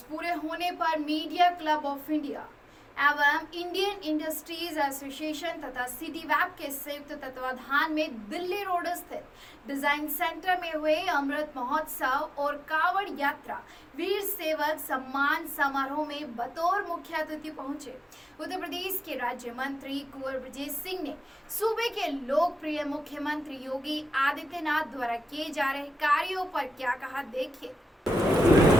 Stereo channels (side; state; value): both; normal; correlation 0.94